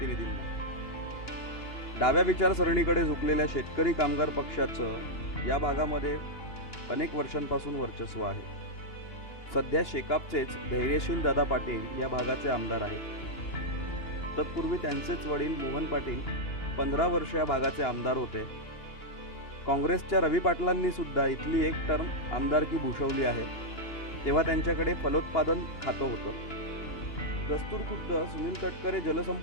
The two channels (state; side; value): late; right; 2.9 ms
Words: डाव्या विचारसरणीकडे झुकलेल्या शेतकरी कामगार पक्षाचं या भागामध्ये अनेक वर्षांपासून वर्चस्व आहे. सध्या शेकापचेच धैर्यशील दादा पाटील या भागाचे आमदार आहेत. तत्पूर्वी त्यांचेच वडील मोहन पाटील 15 वर्ष या भागाचे आमदार होते. काँग्रेसच्या रवी पाटलांनी सुद्धा इथली एक टर्म आमदारकी भूषवली आहे. तेव्हा त्यांच्याकडे फलोत्पादन खातं होतं. दस्तूर खुद्द सुनील तटकरे